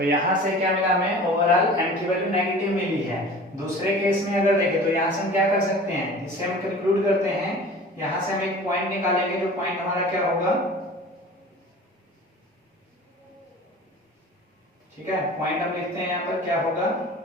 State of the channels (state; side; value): normal; both; correlation 0.41